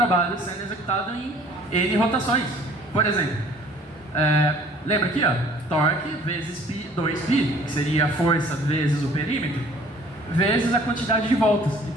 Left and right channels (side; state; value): both; normal; correlation 0.54